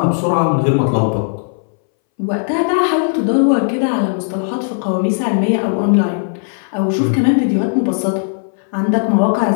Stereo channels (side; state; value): right; silent; 65 dB below the other